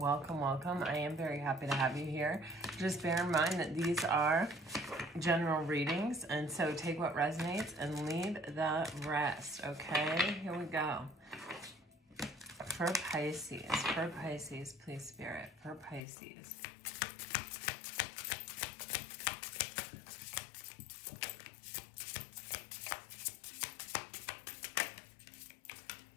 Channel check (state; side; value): drops out; right; at 16.0 s